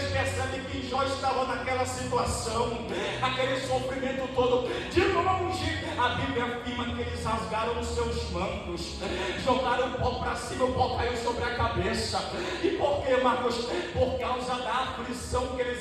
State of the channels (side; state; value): both; identical; correlation 1.00